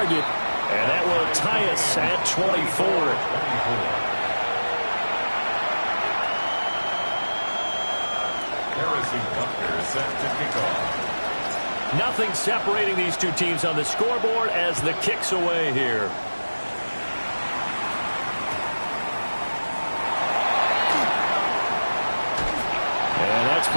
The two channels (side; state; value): both; inverted; correlation -1.00